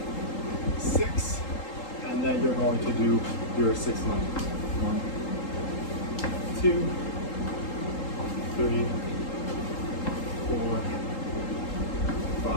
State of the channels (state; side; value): late; right; 3.8 ms